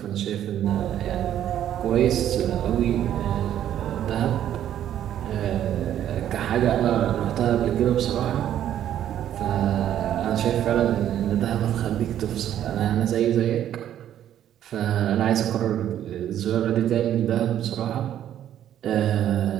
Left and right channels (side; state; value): left; quieter; 11.0 dB